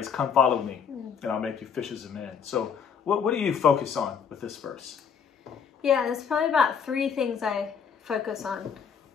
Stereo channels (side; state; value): right; quieter; 6.9 dB